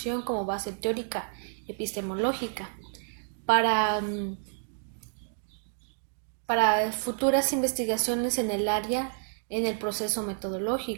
como base teórica epistemológica para, para futuras investigaciones en el área en el proceso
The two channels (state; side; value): silent; left; digital silence